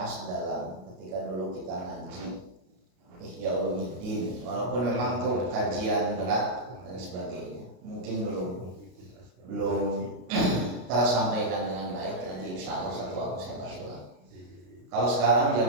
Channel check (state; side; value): late; left; 33 ms